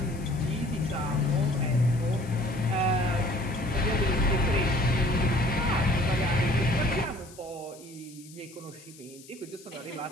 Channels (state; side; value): noise; left; hiss, 21 dB below the sound